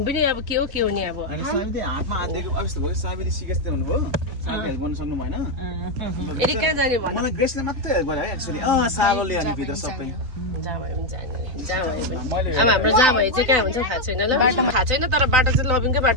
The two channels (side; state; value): left; late; 3.9 ms